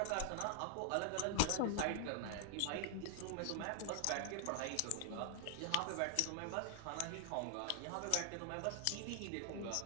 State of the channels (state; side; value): different; both; correlation 0.00